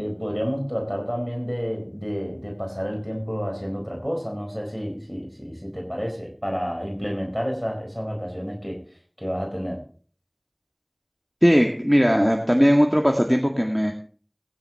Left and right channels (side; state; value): both; identical; correlation 1.00